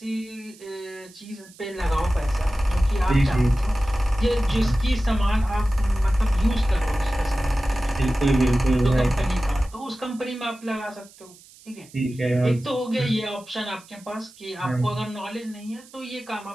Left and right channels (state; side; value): noise; right; hiss, 24 dB below the sound